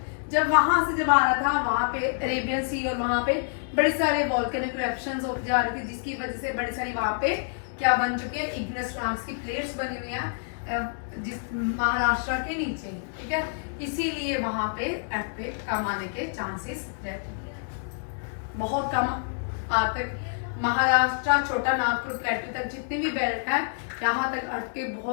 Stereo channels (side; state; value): right; silent; digital silence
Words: जब वहां से जब आ रहा था वहां पे अरेबियन सी और वहां पे बड़े सारे वॉल्केनिक इरप्शंस होते जा रहे थे, जिसकी वजह से बड़ी सारी वहां पे क्या बन चुके हैं? इग्नेस रॉक्स की प्लेट्स बनी हुई हैं जिस महाराष्ट्र के नीचे, ठीक है। इसीलिए वहां पे अर्थक्वेक कम आने के चांसेस रहते हैं, बहुत कम तक महाराष्ट्र, छोटा नागपुर, प्लेटू तक जितने भी बेल्ट है यहाँ तक अर्थ के